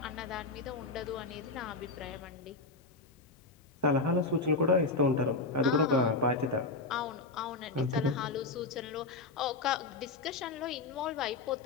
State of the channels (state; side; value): quieter; right; 3.5 dB